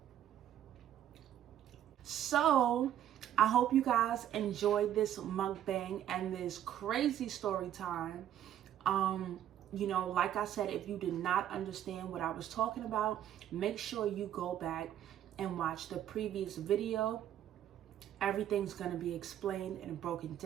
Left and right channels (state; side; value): quieter; left; 11.1 dB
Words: So I hope you guys enjoyed this mukbang and this crazy story time. You know, like I said, if you did not understand what I was talking about, make sure you go back and watch the previous video. Everything's going to be explained and broken